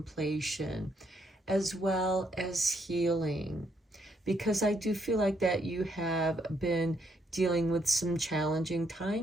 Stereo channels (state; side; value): normal; both; correlation 0.74